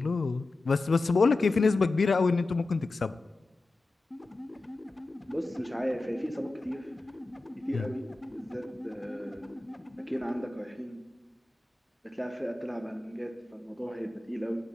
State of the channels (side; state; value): right; quieter; 3.1 dB